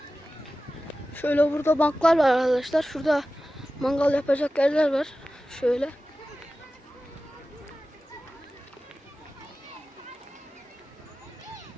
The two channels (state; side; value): normal; both; correlation 0.95